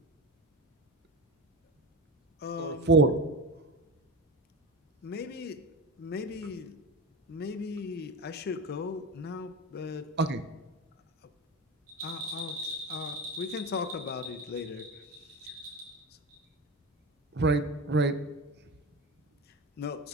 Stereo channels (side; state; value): both; normal; correlation 0.25